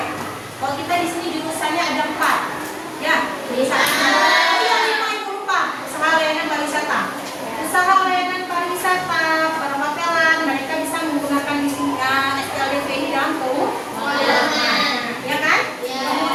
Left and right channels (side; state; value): both; identical; correlation 1.00